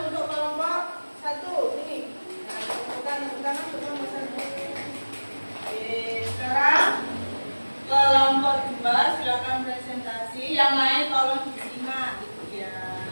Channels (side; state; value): both; inverted; correlation -1.00